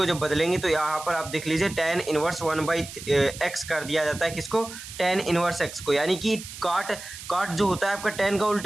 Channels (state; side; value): noise; right; hiss, 13 dB below the sound